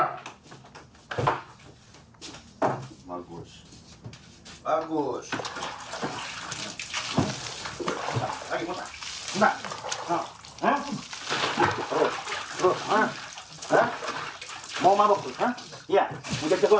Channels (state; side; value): identical; both; correlation 1.00